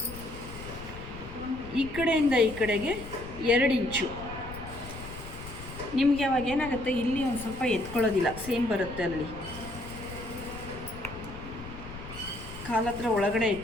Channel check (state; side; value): noise; left; rumble, 13 dB below the sound